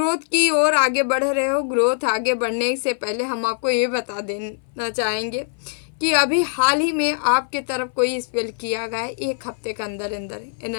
की ओर आगे बढ़ रहे हो। ग्रोथ आगे बढ़ने से पहले हम आपको ये बता देना चाहेंगे कि अभी हाल ही में आपके तरफ कोई स्पेल किया गया है, 1 हफ्ते के अंदर अंदर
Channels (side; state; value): right; silent; 61 dB below the other